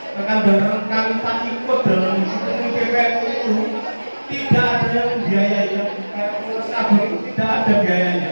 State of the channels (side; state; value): both; inverted; correlation -1.00